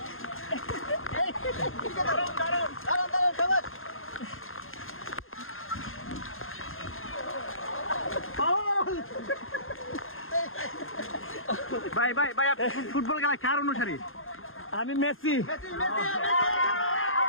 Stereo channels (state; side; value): late; right; 0.60 ms